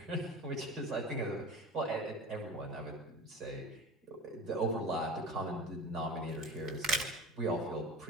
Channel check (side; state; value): both; normal; correlation 0.34